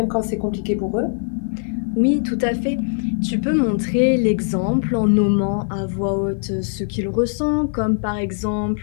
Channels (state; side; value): silent; right; 65 dB below the other